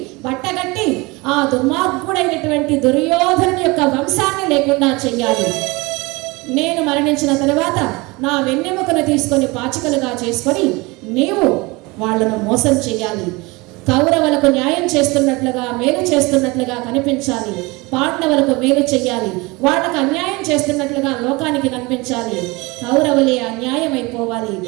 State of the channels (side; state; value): left; quieter; 24.4 dB